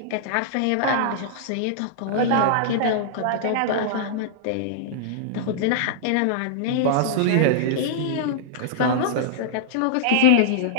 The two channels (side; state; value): both; different; correlation -0.02